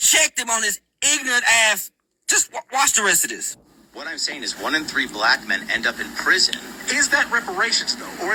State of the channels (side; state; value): both; identical; correlation 1.00